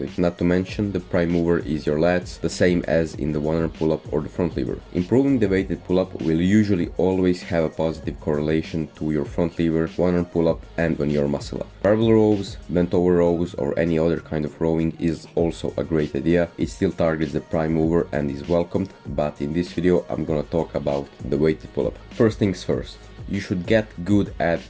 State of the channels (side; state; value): both; identical; correlation 1.00